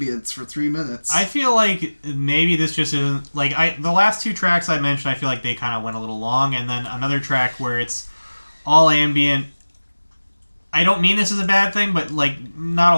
for 3 minutes. I feel like maybe this just isn't like the last two tracks I mentioned. I feel like they kind of went a little long, and then another track where it's all ambient. I don't mean this is a bad thing, but like not a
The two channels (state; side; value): inverted; both; correlation -1.00